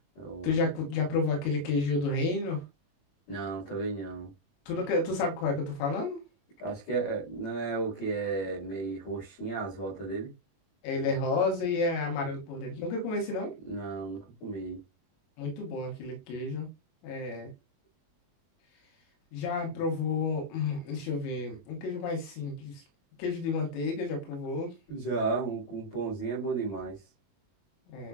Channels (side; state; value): right; late; 21 ms